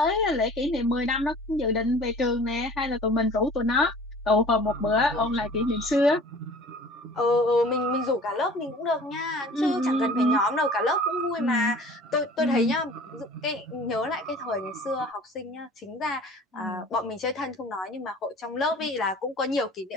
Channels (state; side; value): normal; both; correlation 0.46